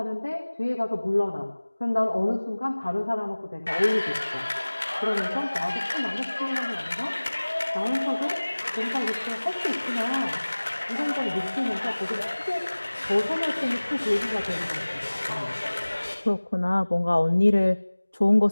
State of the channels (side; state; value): both; inverted; correlation -1.00